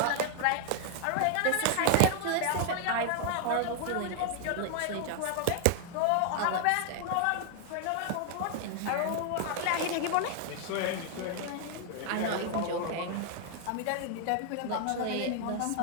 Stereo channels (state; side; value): different; both; correlation 0.00